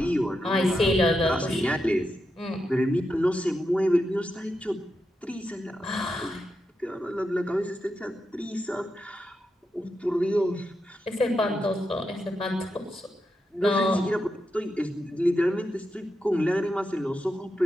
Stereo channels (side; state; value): both; normal; correlation 0.86